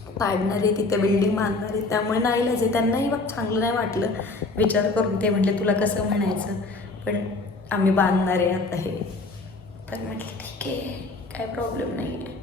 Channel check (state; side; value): quieter; right; 3.4 dB